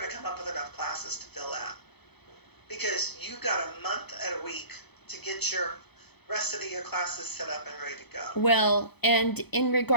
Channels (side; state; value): right; late; 0.98 ms